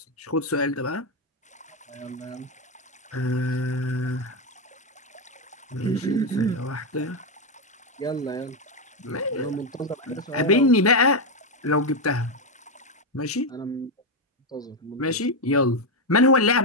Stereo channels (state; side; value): normal; both; correlation 0.05